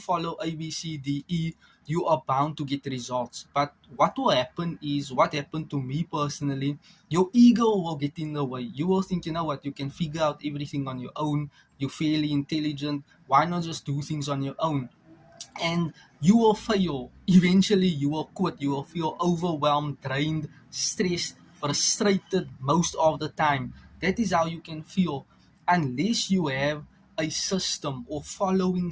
A, B, C, D, E, you are bound to get results. But what will happen is what happened to me personally. Your ego will get in the way. You will think, you know what, you can figure out everything on your own. You're fairly intelligent. Why not just do things on your own? And you will fail. Eventually, you will quit. You will feel overwhelmed, drained, stressed, frustrated most of the time. That is how you can feel unless you have a system or following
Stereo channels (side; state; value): both; identical; correlation 1.00